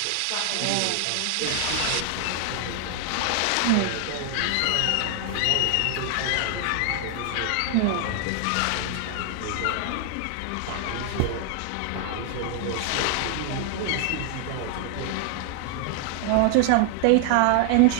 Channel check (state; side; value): different; both; correlation 0.00